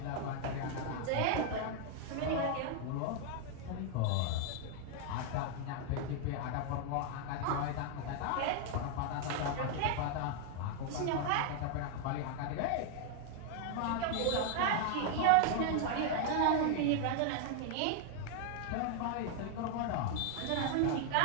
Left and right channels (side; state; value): both; different; correlation 0.00